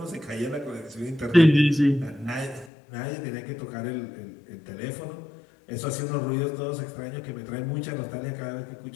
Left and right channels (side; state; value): right; drops out; at 2.7 s